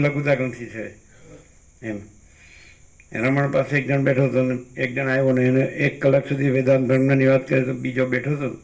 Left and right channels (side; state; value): both; identical; correlation 1.00